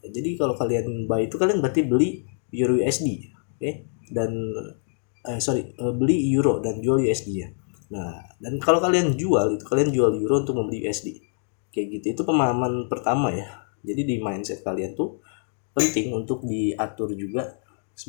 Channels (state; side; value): silent; right; digital silence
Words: Jadi kalau kalian buy itu kalian berarti beli Euro USD, oke? Dan beli Euro dan jual USD ya. Nah, dan kalau kalian jual itu kalian jual Euro untuk membeli USD. Kayak gitu. Itu pemahaman pertama ya. Jadi di mindset kalian tuh penting untuk diatur juga